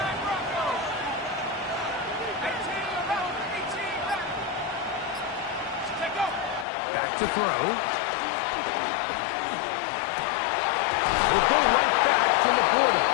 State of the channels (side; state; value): right; drops out; at 6.7 s